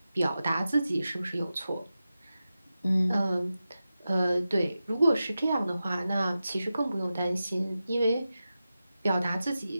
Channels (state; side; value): inverted; both; correlation -0.93